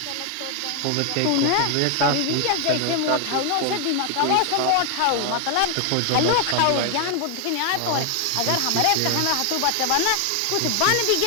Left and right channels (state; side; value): different; both; correlation 0.00